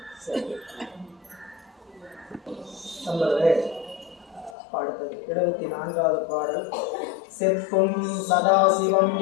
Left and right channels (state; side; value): drops out; right; at 4.5 s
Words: அடுத்தது 74வது பாடல். செப்பும் சதாசிவம்